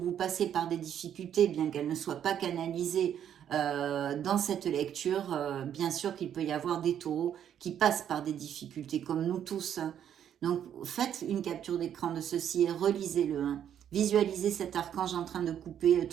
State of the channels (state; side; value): quieter; left; 9.6 dB